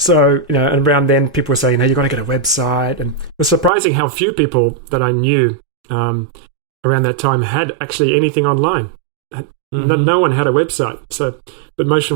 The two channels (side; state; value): left; drops out; at 3.7 s